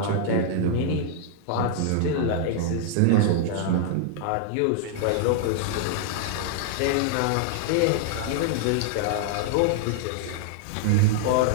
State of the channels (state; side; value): different; both; correlation -0.01